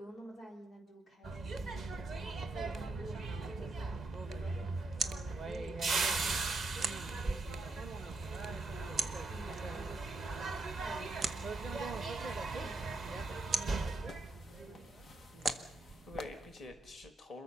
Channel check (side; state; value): left; quieter; 3.3 dB